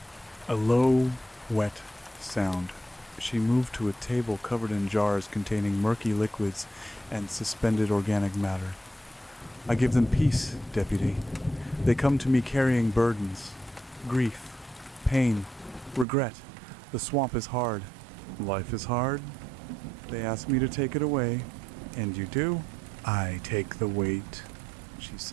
A low, wet sound. She moved to a table covered in jars containing murky liquids and suspended organic matter. "I give them peace, Deputy. They come to me carrying burdens. Grief, pain, regret. The swamp is hard. Life is hard. They ask me to take it away. And you do?" "I take the weight," she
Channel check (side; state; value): left; drops out; at 16.1 s